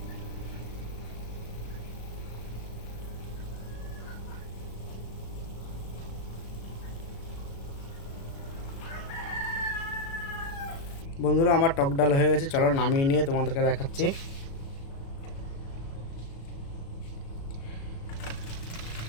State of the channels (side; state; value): right; late; 36 ms